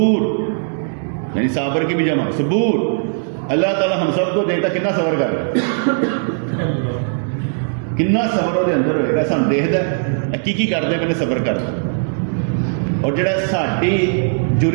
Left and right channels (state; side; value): silent; left; digital silence